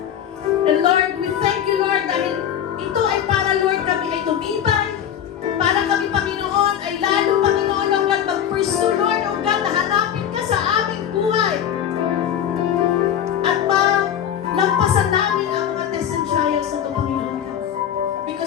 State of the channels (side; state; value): right; quieter; 9.7 dB